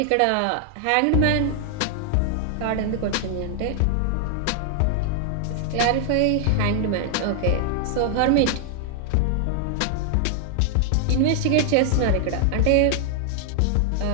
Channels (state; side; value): different; both; correlation 0.00